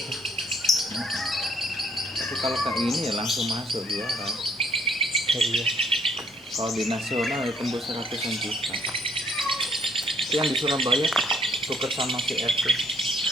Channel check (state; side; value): normal; both; correlation 0.65